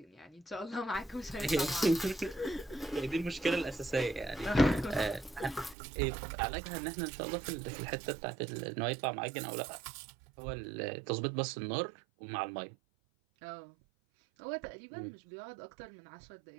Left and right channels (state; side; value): drops out; left; at 5.8 s